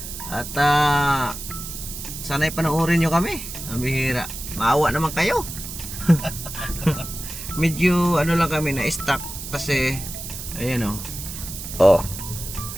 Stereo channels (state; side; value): noise; right; hiss, 9 dB below the sound